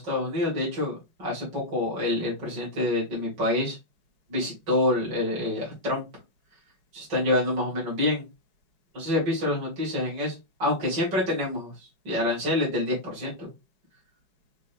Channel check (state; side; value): late; left; 5.3 ms